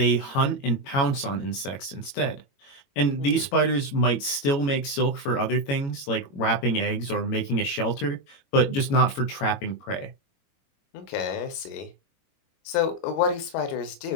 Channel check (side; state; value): right; late; 22 ms